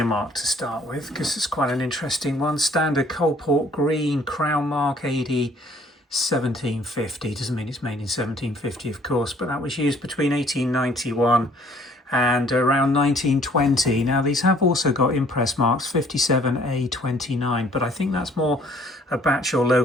mark to start with because it's quite an interesting one. Standard Coalport green crown mark AD 1750. Doesn't mean it's made in 1750, of course, but that was used between 1891 and around 1920. Now these have also got impress marks 57A29, but I think that's more a batch or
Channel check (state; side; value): normal; both; correlation 0.59